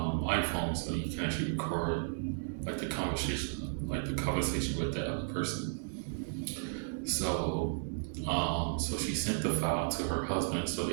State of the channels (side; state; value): left; silent; 55 dB below the other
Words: iPhone, so you can actually record like the conversation with that other person. So so she sent the file to her husband so